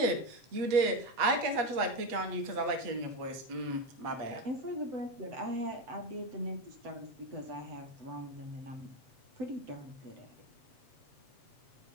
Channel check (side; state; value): left; late; 8.2 ms